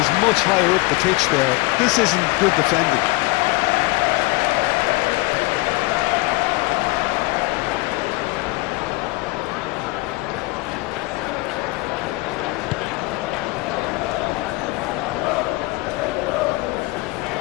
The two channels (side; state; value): right; quieter; 23.1 dB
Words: much higher up the pitch there. This isn't good defending.